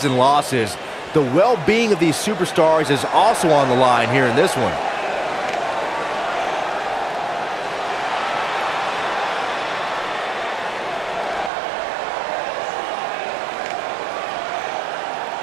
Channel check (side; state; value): left; drops out; at 11.5 s